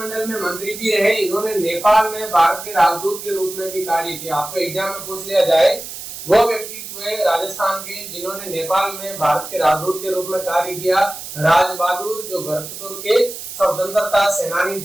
में मंत्री भी रहे। इन्होंने नेपाल में भारत के राजदूत के रूप में भी कार्य किया। आपको एग्जाम में पूछ लिया जाए वो व्यक्तित्व है राजस्थान के जिन्होंने नेपाल में भारत के राजदूत के रूप में कार्य किया, राज बहादुर, जो भरतपुर के स्वतंत्रता सेनानी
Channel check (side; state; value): right; noise; hiss, 10 dB below the sound